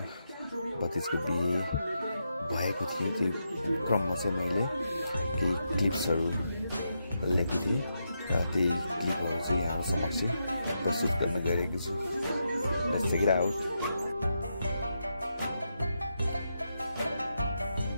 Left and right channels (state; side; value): inverted; both; correlation -0.84